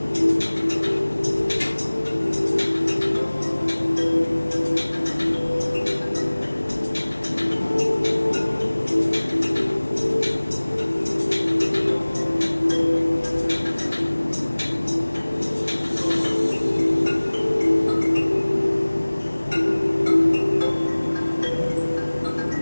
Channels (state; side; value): inverted; both; correlation -1.00